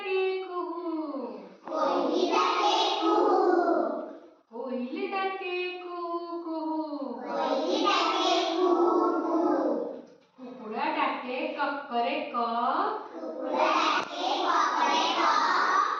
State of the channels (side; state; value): both; identical; correlation 1.00